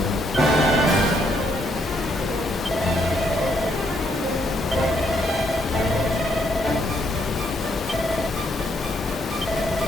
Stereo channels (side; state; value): both; normal; correlation 0.73